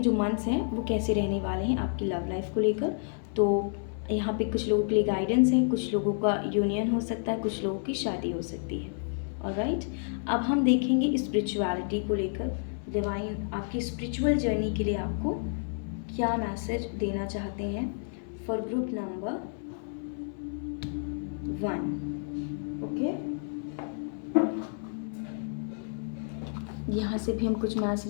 मंथ्स हैं वो कैसे रहने वाले हैं आपकी लव लाइफ को लेकर। तो यहाँ पे कुछ लोगों के लिए गाइडेंस है, कुछ लोगों का यूनियन हो सकता है, कुछ लोगों की शादी हो सकती है। ऑलराइट, अब हम देखेंगे स्पिरिचुअलिटी को लेकर। डिवाइन आपकी स्पिरिचुअल जर्नी के लिए आपको क्या मैसेज देना चाहते हैं फॉर ग्रुप नंबर 1, ओके। यहाँ से भी हम कुछ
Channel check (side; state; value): right; silent; 57 dB below the other